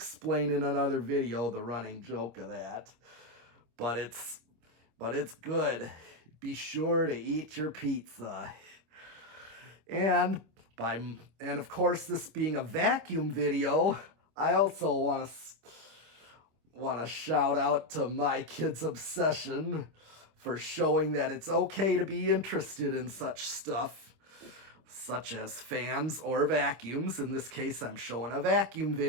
in another video the running joke of that. But but it's good. Be sure to eat your pizza. And of course, this being a vacuum video, I also want to shout out to my kid's obsession for showing that it's okay to be interested in such stuff, such as fans or vacuums. In this case, I'm showing a vacuum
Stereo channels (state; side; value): late; left; 26 ms